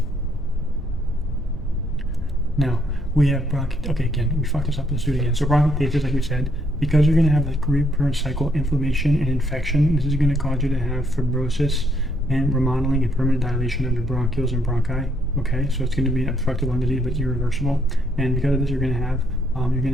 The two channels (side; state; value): both; normal; correlation 0.71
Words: Now, we have okay, again, we fucked this up, let's do it again. So bronchiectasis, like we said, because you're going to have the recurrent cycle inflammation and infection, this is going to cause you to have fibrosis and remodeling and permanent dilation of your bronchioles and bronchi. Okay, so it's going to be obstructive lung disease, but irreversible. And because of this, you're going to